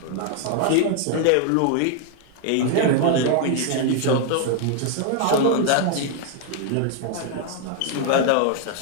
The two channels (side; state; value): both; different; correlation 0.00